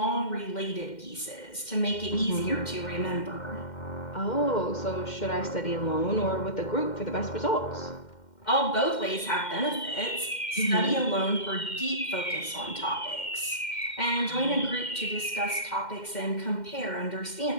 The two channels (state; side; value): late; right; 2.1 ms